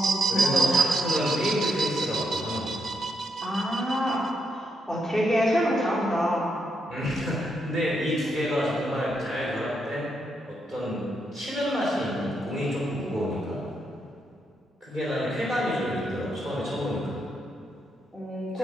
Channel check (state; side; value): normal; both; correlation 0.79